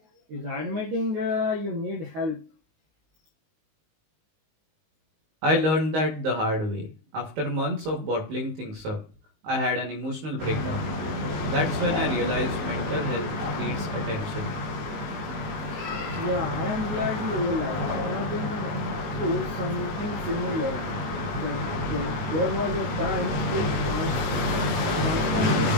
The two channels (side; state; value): left; late; 19 ms